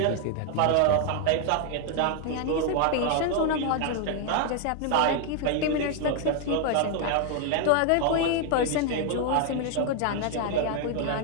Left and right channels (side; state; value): both; different; correlation 0.00